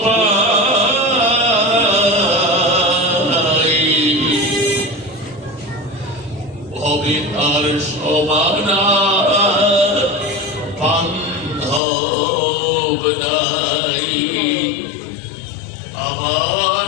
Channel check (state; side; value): drops out; right; at 11.8 s